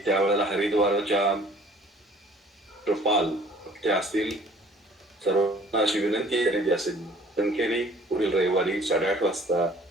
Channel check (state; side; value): normal; both; correlation 0.54